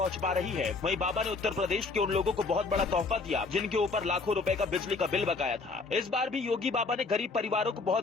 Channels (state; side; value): quieter; right; 4.0 dB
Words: पा रही है, वहीं बाबा ने उत्तर प्रदेश के उन लोगों को बहुत बड़ा तोहफा दिया जिनके ऊपर लाखों रुपए का बिजली का बिल बकाया था। इस बार भी योगी बाबा ने गरीब परिवारों को